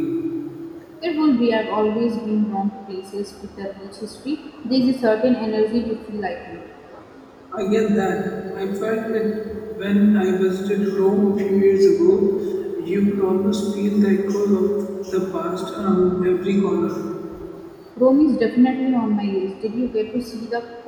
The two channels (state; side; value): identical; both; correlation 1.00